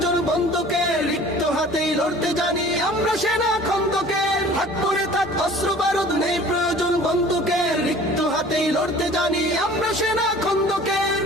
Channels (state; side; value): normal; both; correlation 0.47